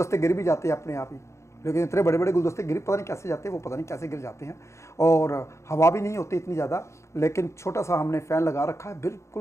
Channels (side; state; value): right; late; 0.14 ms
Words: गिर भी जाते हैं अपने आप ही। लेकिन इतने बड़े बड़े गुलदस्ते गिर पता नहीं कैसे जाते हैं, वो पता नहीं कैसे गिर जाते हैं। और हवा भी नहीं होती इतनी ज़्यादा, लेकिन छोटा सा हमने फ़ैन लगा रखा है,